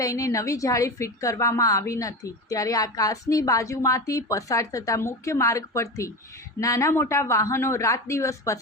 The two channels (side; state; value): both; normal; correlation 0.24